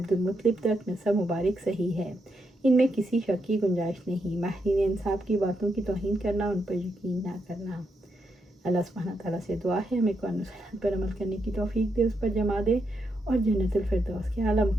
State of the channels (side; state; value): both; normal; correlation 0.81